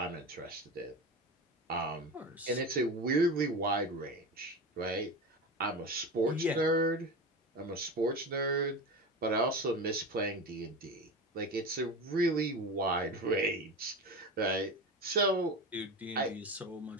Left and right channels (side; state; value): both; normal; correlation 0.26